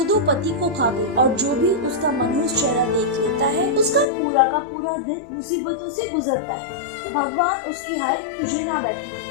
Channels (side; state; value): right; drops out; at 4.0 s